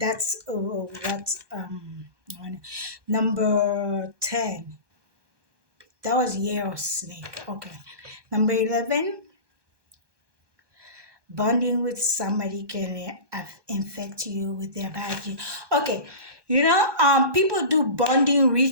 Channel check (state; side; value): late; left; 1.2 ms